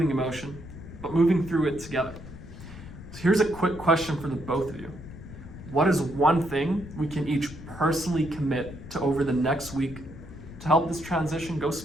emotion, but moving through it together. So here's a quick question for the both of you. What is one thing we can each personally commit to over the next week to help this transition go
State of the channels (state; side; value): noise; left; rumble, 14 dB below the sound